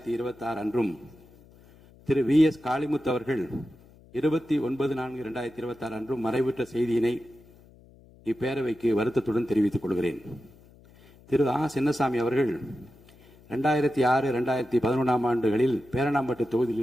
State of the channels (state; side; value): noise; left; hum, 25 dB below the sound